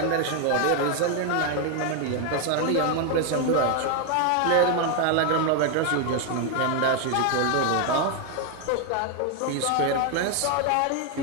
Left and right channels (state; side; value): different; both; correlation 0.01